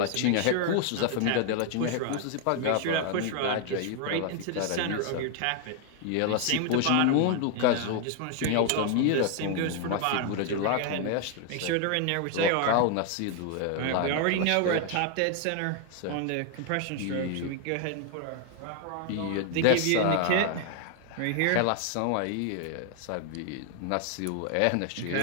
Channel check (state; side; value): different; both; correlation 0.00